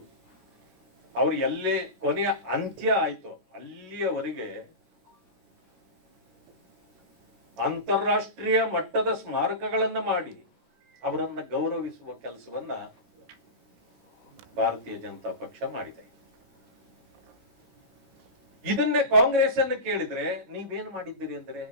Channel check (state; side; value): late; left; 16 ms